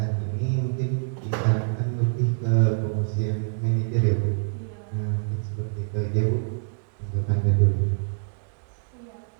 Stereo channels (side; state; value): left; silent; digital silence